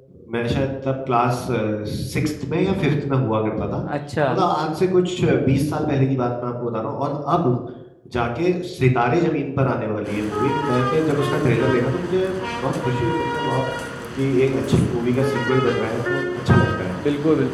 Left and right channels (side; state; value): both; identical; correlation 1.00